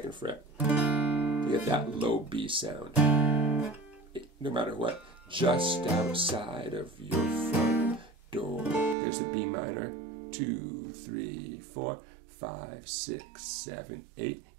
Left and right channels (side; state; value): left; drops out; at 9.0 s